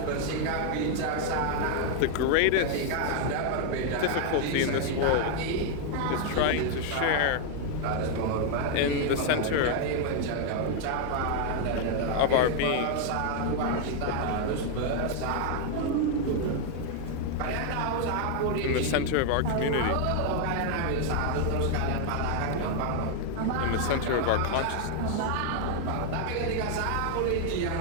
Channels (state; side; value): different; both; correlation 0.00